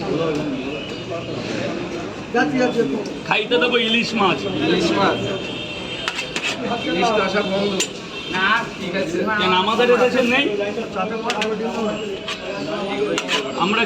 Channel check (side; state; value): both; identical; correlation 1.00